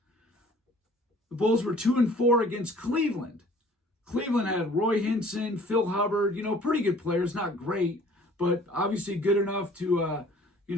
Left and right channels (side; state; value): both; normal; correlation 0.53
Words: The Bulls were 2-4 against Cleveland. Cleveland had Roy Hinson, Phil Hubbard, pretty good players, not great, but obviously good enough to,